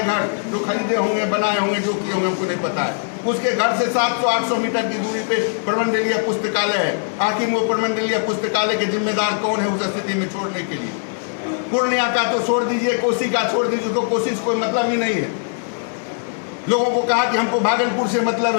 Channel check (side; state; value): right; silent; 65 dB below the other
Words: घर, जो खरीदे होंगे, बनाए होंगे, जो किए होंगे, हमको नहीं पता है। उसके घर से 700-800 मीटर की दूरी पे प्रमंडलीय पुस्तकालय है। आखिर वो प्रमंडलीय पुस्तकालय के जिम्मेदार कौन है उस स्थिति में छोड़ने के लिए? पूर्णिया का तो छोड़ दीजिए, कोसी का छोड़ दीजिए, तो कोसी से कोई मतलब ही नहीं है। लोगों को कहा कि हमको भागलपुर से मतलब,